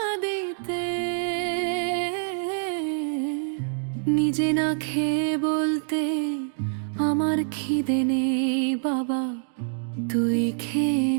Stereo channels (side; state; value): left; silent; digital silence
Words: দিতে, নিজে না খেয়ে বলতে আমার খিদে নেই বাবা, তুই খেয়ে